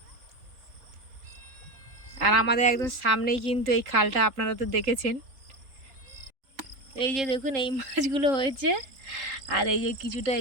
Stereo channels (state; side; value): late; left; 3.7 ms